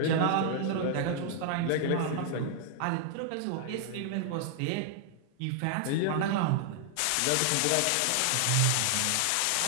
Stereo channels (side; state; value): both; different; correlation 0.00